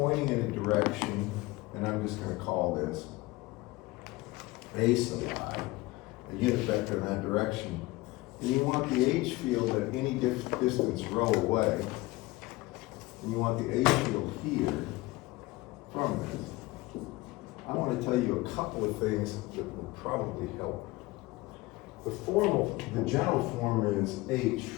in a direction, and I'm just going to call this A sub I, a unit vector in that direction, and you want the H field at any distance rho away, and you want the H field here from this. I want to tell you a couple of things that will probably help. The general form is H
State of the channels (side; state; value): right; quieter; 20.9 dB